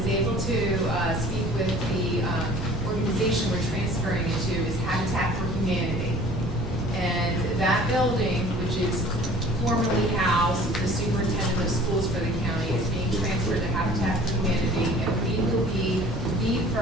able to speak with the organization we're transferring it to is Habitat for Humanity. And that building, which is formerly housed the superintendent of schools for the county, is being transferred to Habitat for Humanity, and we will be the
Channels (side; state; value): both; normal; correlation 0.48